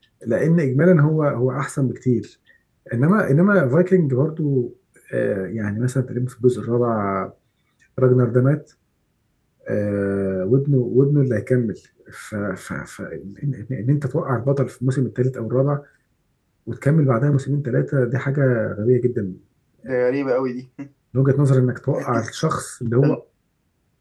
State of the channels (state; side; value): identical; both; correlation 1.00